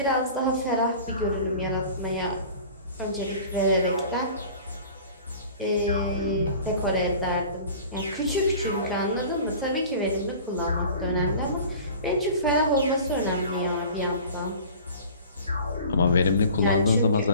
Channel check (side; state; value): both; inverted; correlation -0.42